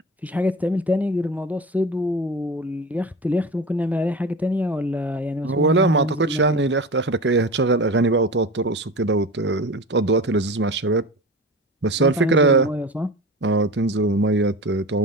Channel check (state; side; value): normal; both; correlation 0.31